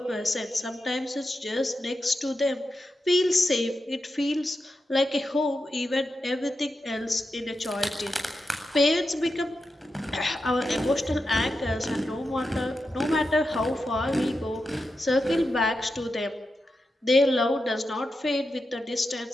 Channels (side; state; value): both; normal; correlation 0.89